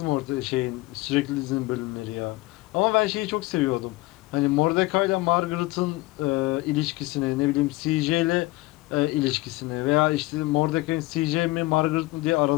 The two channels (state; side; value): quieter; right; 20.3 dB